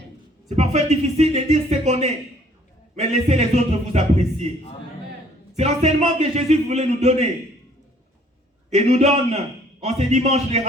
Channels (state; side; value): normal; both; correlation 0.59